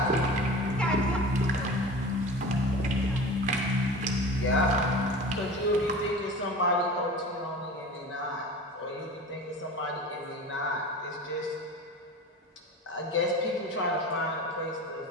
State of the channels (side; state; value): both; normal; correlation 0.36